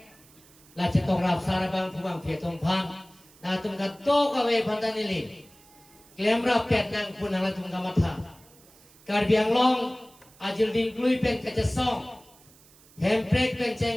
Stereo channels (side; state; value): right; noise; hiss, 26 dB below the sound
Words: là chỉ tông rạp xa bằng phù bằng phía tông phan là tùm cả tô cả về phán tani li klem rạp pet nang pun là tùm cả mặt thả Card biang long ajil ding klui pen kaca song handbrake pen